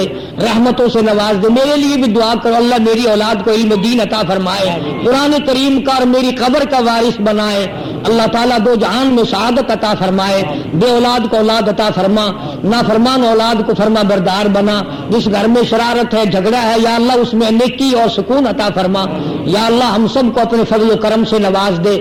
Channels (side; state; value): both; identical; correlation 1.00